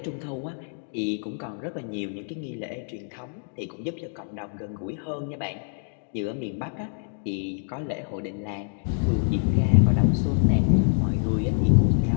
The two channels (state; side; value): silent; right; 61 dB below the other